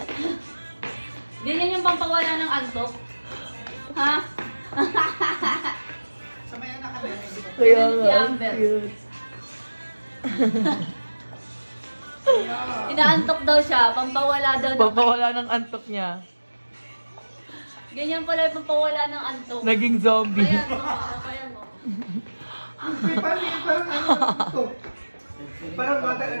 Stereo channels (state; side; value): inverted; both; correlation -1.00